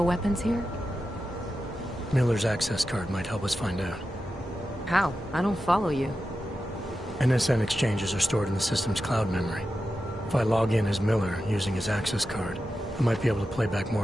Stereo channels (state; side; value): normal; both; correlation 0.91